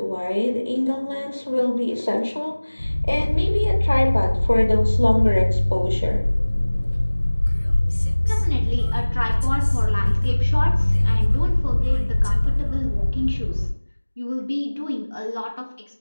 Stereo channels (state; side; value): inverted; both; correlation -1.00